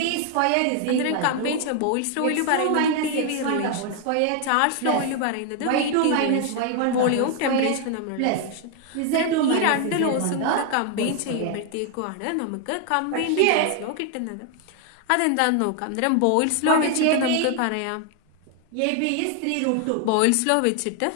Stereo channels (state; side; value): different; both; correlation 0.00